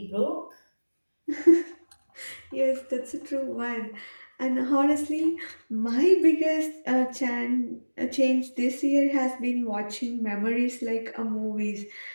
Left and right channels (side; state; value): both; inverted; correlation -1.00